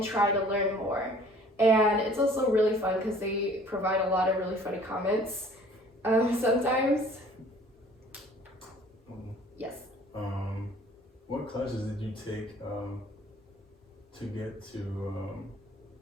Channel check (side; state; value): both; normal; correlation 0.52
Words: try to learn more. And it's also really fun because they provide a lot of really funny comments sometimes. Yes. What classes did you take to get to